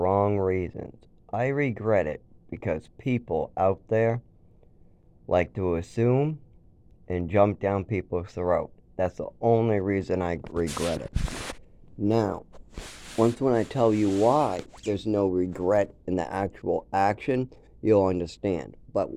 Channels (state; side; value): identical; both; correlation 1.00